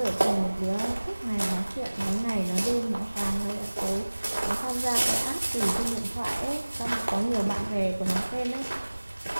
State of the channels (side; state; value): both; inverted; correlation -1.00